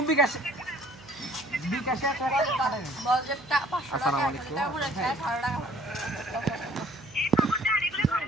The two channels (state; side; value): noise; right; hum, 22 dB below the sound